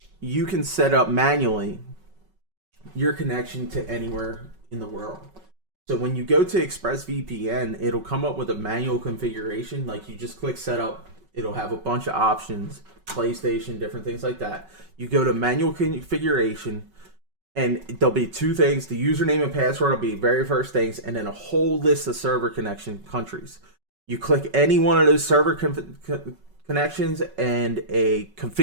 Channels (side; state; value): left; late; 5.3 ms